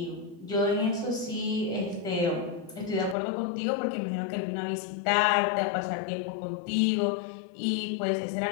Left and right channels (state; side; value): drops out; right; at 3.2 s